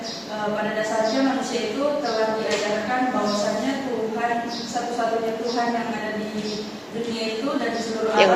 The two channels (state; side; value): identical; both; correlation 1.00